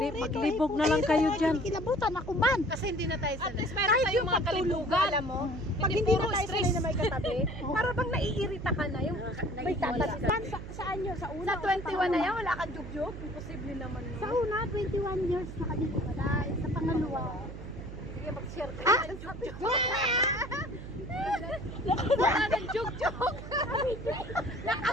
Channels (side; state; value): right; noise; hum, 11 dB below the sound